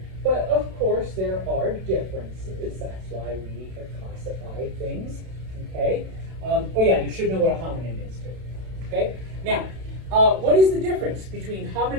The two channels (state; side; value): late; left; 32 ms